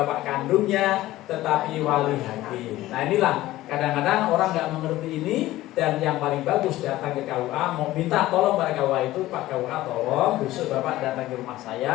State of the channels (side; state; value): right; quieter; 16.1 dB